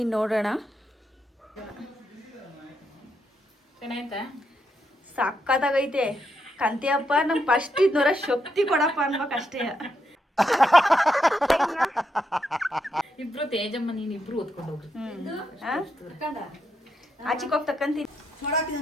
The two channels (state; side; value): normal; both; correlation 0.80